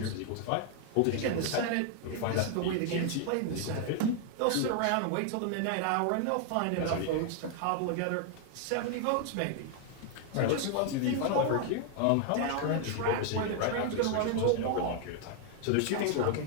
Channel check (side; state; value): both; different; correlation 0.00